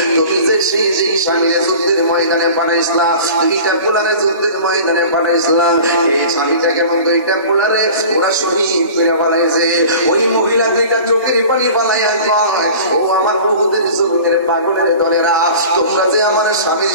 তুমি যে সেই স্বামীর যুদ্ধের ময়দানে পাঠাইছিলা দুইটা পোলারে যুদ্ধের ময়দানে পাঠাইছিলা এই স্বামীটাকে দুইটা পোলারে ওরা শহীদ করে বানাইছে ওই মহিলা দুইটা চোখের পানি বানাইয়া কয় ও আমার বহুদের জমিনের পাগলের দলেরা তোমরা যে আমার স্বামীর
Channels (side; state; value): both; inverted; correlation -0.40